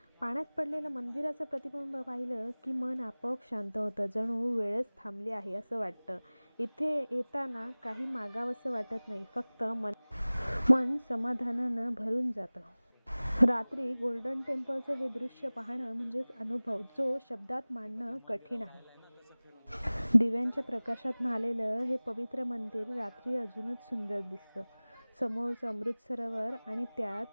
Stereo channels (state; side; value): inverted; both; correlation -1.00